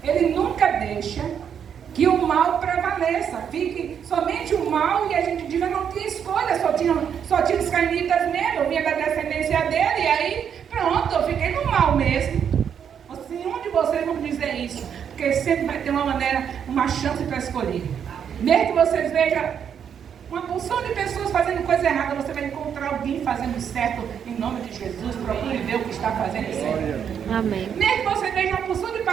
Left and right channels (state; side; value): quieter; left; 8.1 dB